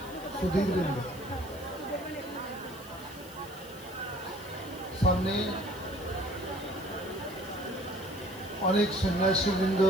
সুধীবৃন্দ, সামনে অনেক সন্ন্যাসীবৃন্দ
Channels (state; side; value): noise; right; hiss, 21 dB below the sound